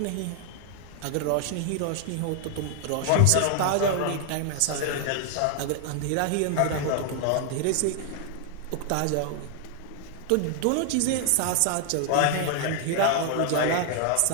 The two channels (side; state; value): both; different; correlation 0.00